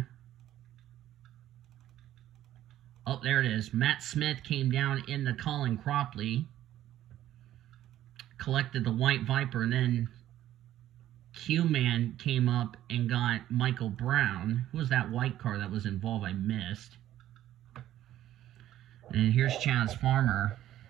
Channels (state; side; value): quieter; left; 12.8 dB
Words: Oh, there it is. Matt Smith came down into Colin Cropley. Collected the White Viper, and then Q-Man came up and got Michael Brown. Who was that white car that was involved? I missed. And here's Chaz Farmer.